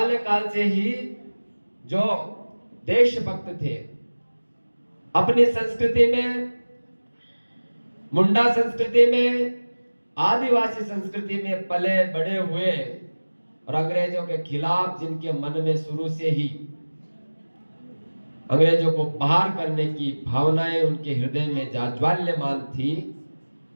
से ही जो देशभक्त थे, अपनी संस्कृति में, मुंडा संस्कृति में, आदिवासी संस्कृति में पले बड़े हुए, और अंग्रेजों के खिलाफ जिनके मन में शुरू से ही अंग्रेजों को बाहर करने की भावनाएं उनके हृदय में जाज्वल्यमान थी,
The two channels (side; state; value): both; inverted; correlation -1.00